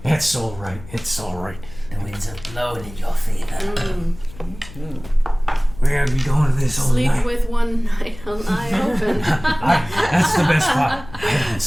It's all right. It's all right. The winds are blowing in your favor. We're gonna be going to this all Sleep night. with one eye open. That's the best part. I don't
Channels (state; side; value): noise; left; hum, 17 dB below the sound